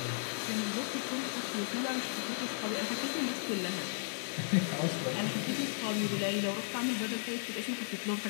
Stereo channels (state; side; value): silent; right; digital silence